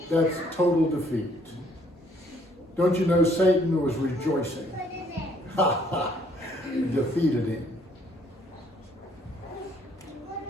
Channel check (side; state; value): both; normal; correlation 0.64